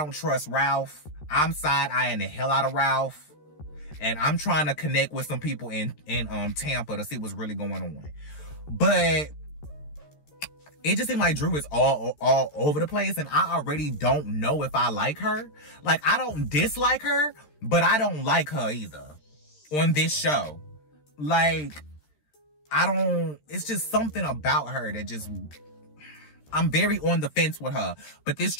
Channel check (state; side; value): late; right; 13 ms